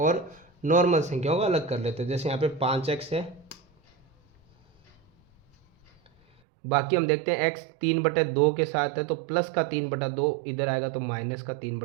नॉर्मल संख्याओं को अलग कर लेते हैं। जैसे यहाँ पे 5x है, बाकी हम देखते हैं x 3/2 के साथ है तो प्लस का 3/2 इधर आएगा तो माइनस का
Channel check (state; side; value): drops out; left; at 6.4 s